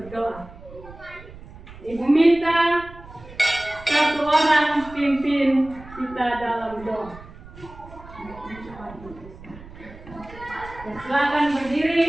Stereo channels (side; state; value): right; noise; rumble, 18 dB below the sound